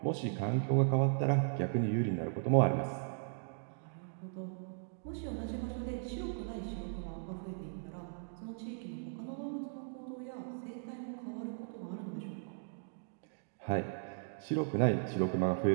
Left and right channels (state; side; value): silent; left; digital silence